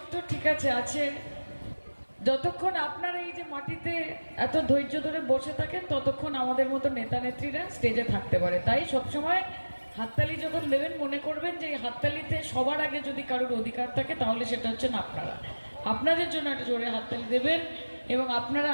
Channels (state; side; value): inverted; both; correlation -1.00